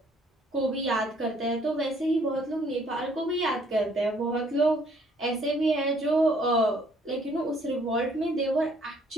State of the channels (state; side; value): normal; both; correlation 0.63